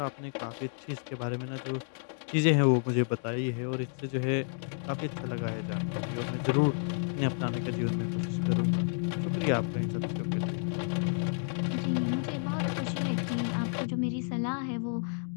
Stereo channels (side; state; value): right; silent; 56 dB below the other